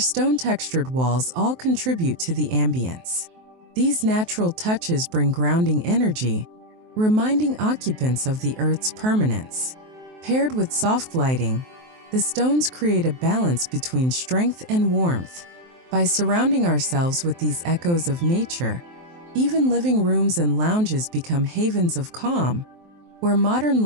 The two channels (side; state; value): left; late; 23 ms